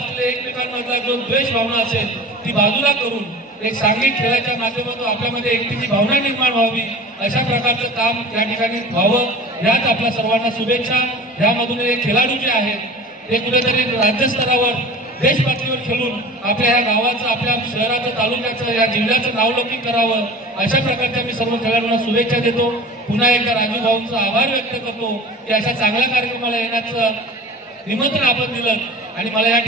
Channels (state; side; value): normal; both; correlation 0.38